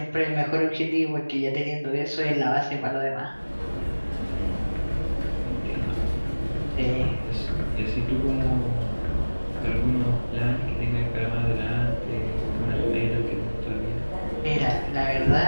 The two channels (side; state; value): both; inverted; correlation -1.00